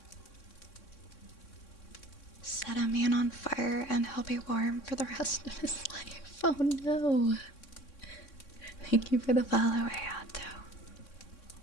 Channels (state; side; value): late; right; 3.6 ms